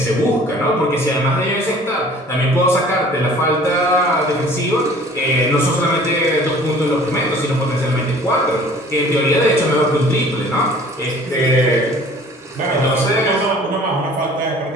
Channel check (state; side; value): normal; both; correlation 0.50